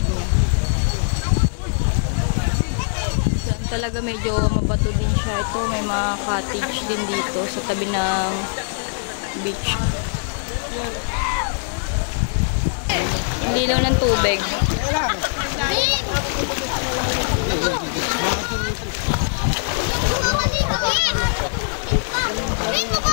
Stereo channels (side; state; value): right; silent; 65 dB below the other